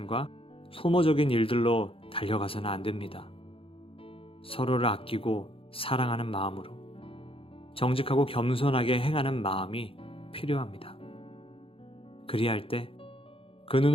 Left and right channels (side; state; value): right; late; 0.27 ms